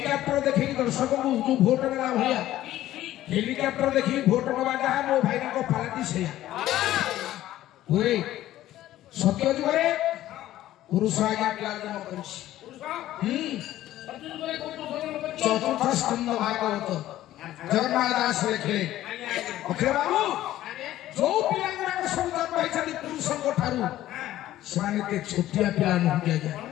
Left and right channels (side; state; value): right; quieter; 14.0 dB